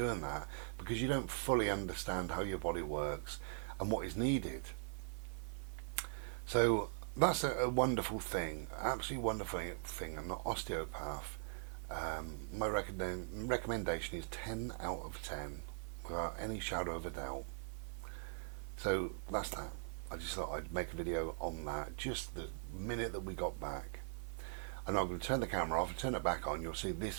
that because you don't fully understand how your body works and what is needed. So that's a wonderful thing, absolutely wonderful thing. I'm not osteopath. My recommendation is 10 out of 10 without any shadow of a doubt. So that's that. I just thought I'd make a video on that just the minute that we got back. And I'm going to turn the camera off and turn it back on. You'll see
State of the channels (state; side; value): silent; left; 50 dB below the other